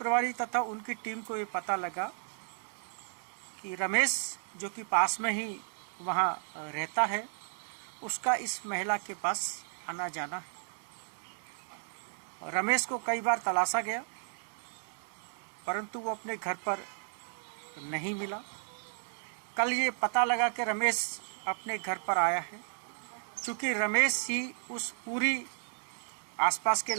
तथा उनकी टीम को ये पता लगा कि रमेश, जो कि पास में ही वहाँ रहता है, उसका इस महिला के पास आना जाना है। रमेश को कई बार तलाशा गया परंतु वो अपने घर पर नहीं मिला। कल ये पता लगा कि रमेश अपने घर पर आया है। चूँकि रमेश ही उस पूरी आसपास के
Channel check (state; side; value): silent; left; 55 dB below the other